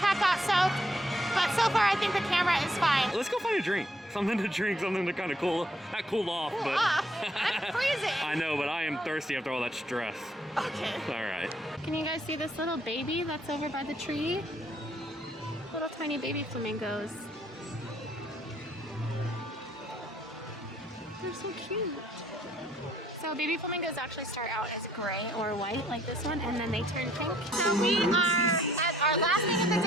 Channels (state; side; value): normal; both; correlation 0.67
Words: got soaked. But so far I think the camera is fine. Let's go find a drink. Something to drink, something to kind of not cool off, but I'm freezing. I know, but I am thirsty after all that stress. Okay. All right. Can you guys see this little baby that's over by the tree? Little tiny baby flamingos. They're so cute. So baby flamingos actually start out as gray or white like this one, and then they turn pink. So we are at our last thing of the